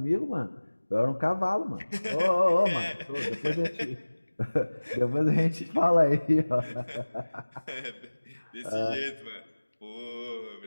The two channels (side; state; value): both; inverted; correlation -1.00